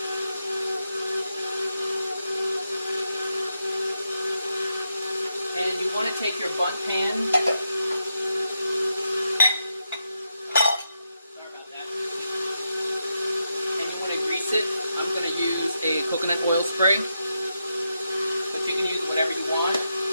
And you want to take your bundt pan. Sorry about that. And you want to grease it. I'm going to use a coconut oil spray. But you can use whatever you want.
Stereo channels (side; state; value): both; inverted; correlation -0.84